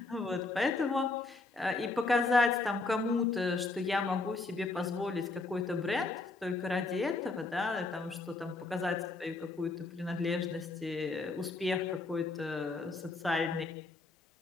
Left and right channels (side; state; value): right; quieter; 3.5 dB